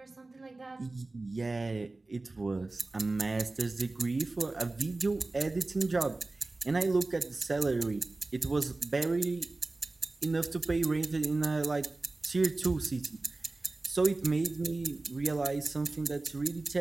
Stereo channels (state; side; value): quieter; left; 3.2 dB